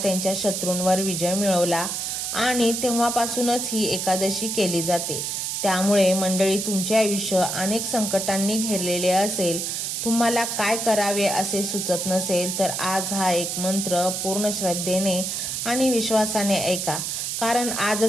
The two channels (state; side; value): noise; right; hiss, 2 dB below the sound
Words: शत्रूंवर विजय मिळवला आणि तेव्हापासूनच ही एकादशी केली जाते. त्यामुळे मंडळी, तुमचे आयुष्य अनेक संकटांनी घेरलेले असेल, तुम्हाला काय करावे असे सुचत नसेल, तर आज हा एक मंत्र पूर्ण श्रद्धेने आणि विश्वासाने ऐका. कारण